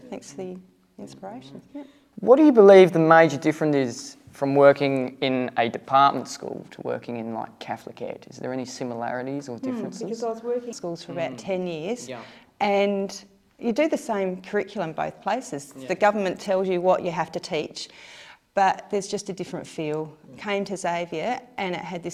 Thanks for the inspiration. Yeah. What do you believe the major difference is from working in a department school to working in like Catholic ed? Is there any similarities or differences? Because I was working in schools for about 10 years, and you do the same curriculum both places. The government tells you what you have to teach, but there's just a different feel. Came to Xavier and it had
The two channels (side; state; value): both; identical; correlation 1.00